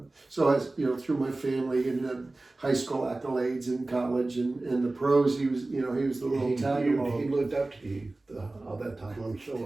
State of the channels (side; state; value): left; quieter; 3.0 dB